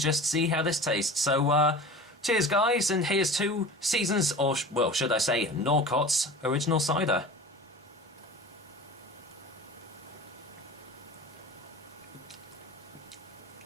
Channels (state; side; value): normal; both; correlation 0.37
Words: just see how this tastes. So cheers, guys, and here's to Seasons, or well, should I say, Norcotts original cider.